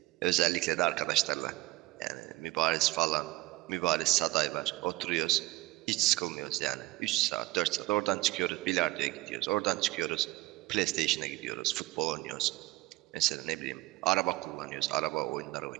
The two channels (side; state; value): left; quieter; 19.5 dB